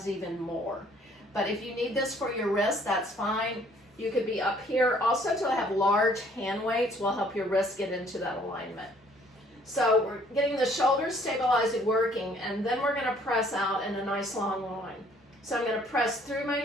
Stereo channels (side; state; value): both; normal; correlation 0.60